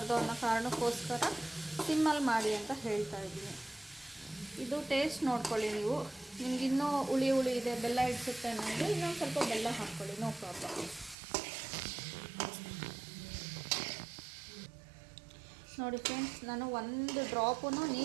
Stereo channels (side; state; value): left; drops out; at 11.2 s